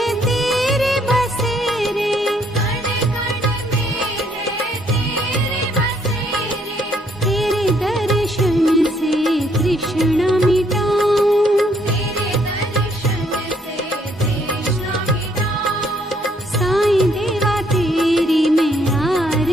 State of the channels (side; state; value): both; normal; correlation 0.68